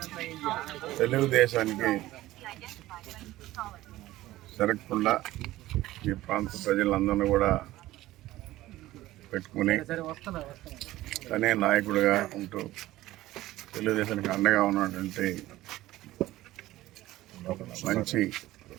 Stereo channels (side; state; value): left; quieter; 16.3 dB